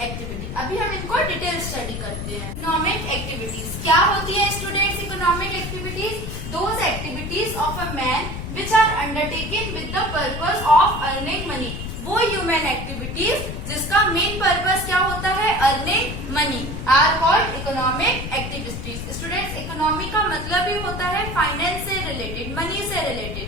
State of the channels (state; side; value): noise; left; rumble, 6 dB below the sound